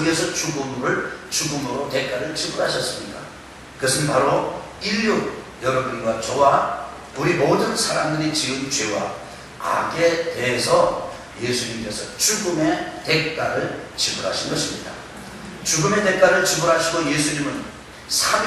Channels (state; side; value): identical; both; correlation 1.00